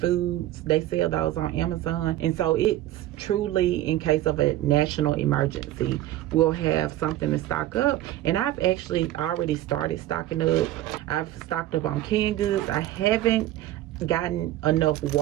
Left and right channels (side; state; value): left; quieter; 14.3 dB